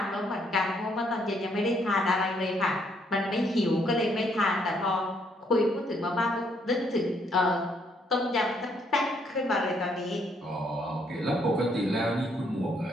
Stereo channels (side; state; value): both; normal; correlation 0.70